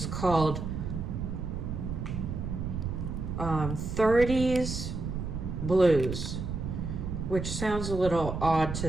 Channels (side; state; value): right; noise; rumble, 4 dB below the sound